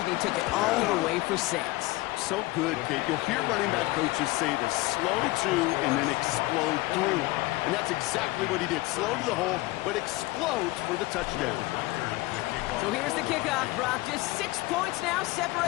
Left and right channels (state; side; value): quieter; right; 20.4 dB